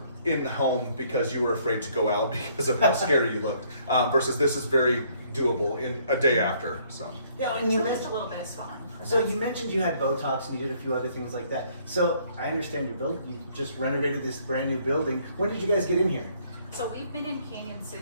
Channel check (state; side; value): inverted; both; correlation -0.65